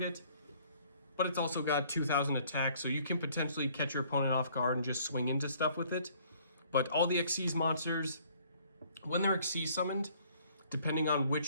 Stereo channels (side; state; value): both; inverted; correlation -0.59